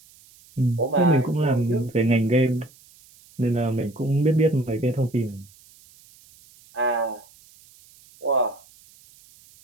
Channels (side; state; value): right; noise; hiss, 27 dB below the sound